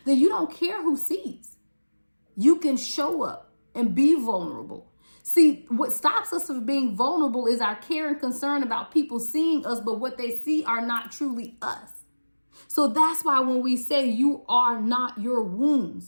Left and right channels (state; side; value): inverted; both; correlation -1.00